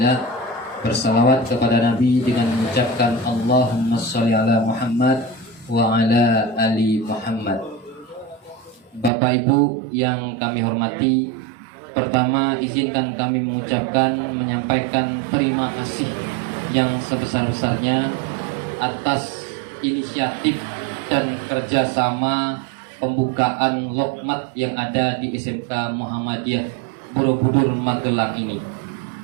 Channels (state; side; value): drops out; left; at 9.1 s